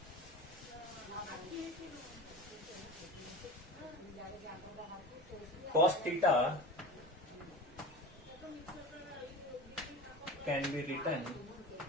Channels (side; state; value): both; normal; correlation 0.33